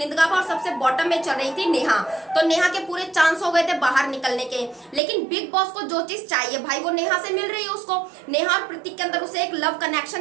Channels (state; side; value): drops out; left; at 5.0 s